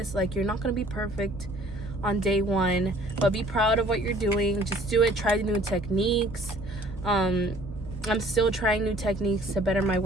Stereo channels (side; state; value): both; normal; correlation 0.55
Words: Like, you're not going to be perfect on day one, but be proud of what you're doing. Just do it. Try new techniques. I'm still trying new techniques to better my